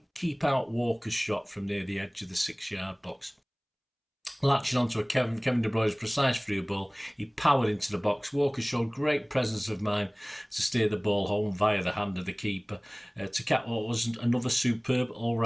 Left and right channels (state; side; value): identical; both; correlation 1.00